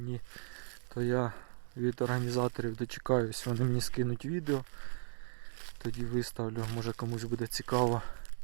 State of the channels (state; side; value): silent; left; digital silence